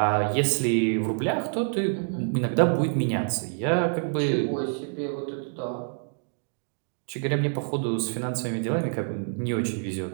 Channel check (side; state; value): left; silent; digital silence